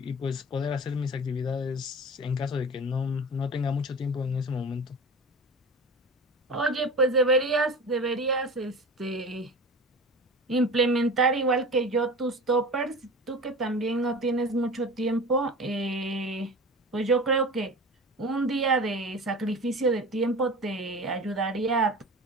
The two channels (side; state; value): both; normal; correlation 0.34